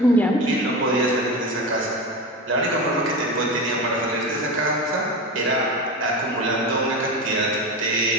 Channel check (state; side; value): normal; both; correlation 0.23